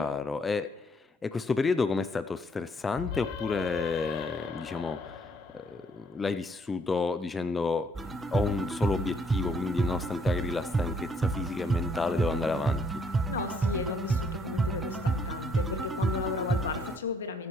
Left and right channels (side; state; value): both; normal; correlation 0.67